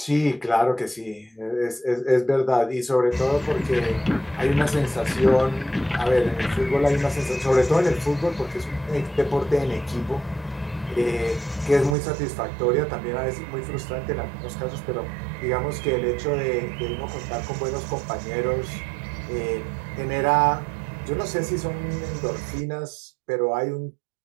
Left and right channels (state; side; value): drops out; left; at 12.0 s